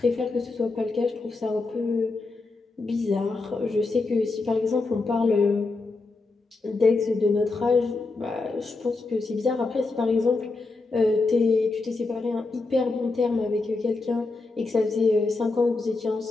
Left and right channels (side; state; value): right; quieter; 3.6 dB